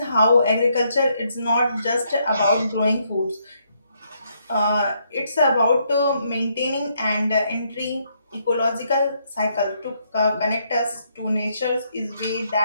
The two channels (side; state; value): both; inverted; correlation -0.74